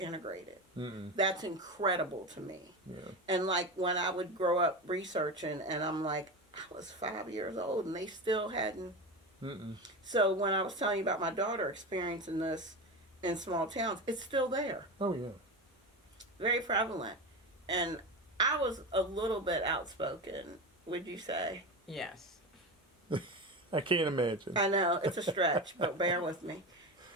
That's incredible to me. And like when I would grow up researching, and I'm like, I was 5 years old and they still hadn't. So when I was telling you about my daughter experiencing this in small towns, it's still there. Oh yeah. Very prevalent. And I was a little bit outspoken, would you say? Yes. I can't imagine. I know, it's a stretch, but bear with me.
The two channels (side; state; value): both; normal; correlation 0.22